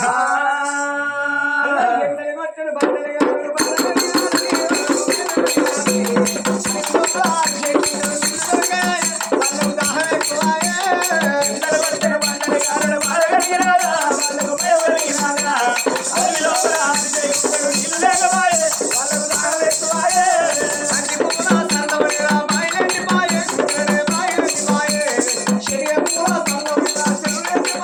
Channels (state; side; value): identical; both; correlation 1.00